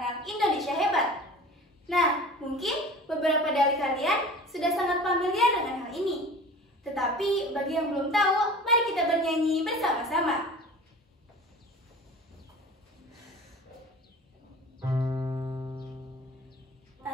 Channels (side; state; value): both; normal; correlation 0.40